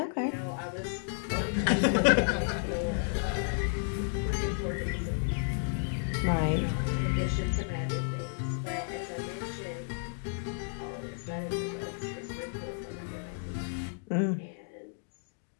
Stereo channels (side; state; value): right; silent; digital silence